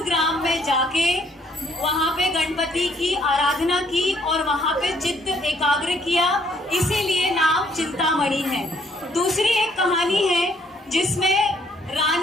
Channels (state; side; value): normal; both; correlation 0.66